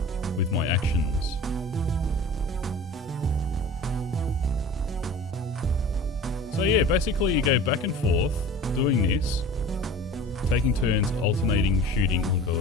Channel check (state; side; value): normal; both; correlation 0.40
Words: with my actions. So yeah, basically you go back and forth doing this, taking turns, alternating, shooting. Oh